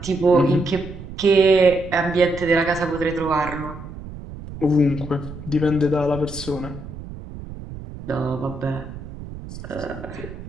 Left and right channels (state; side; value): noise; right; rumble, 12 dB below the sound